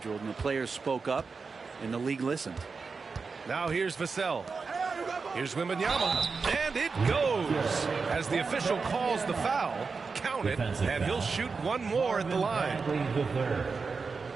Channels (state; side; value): quieter; left; 4.8 dB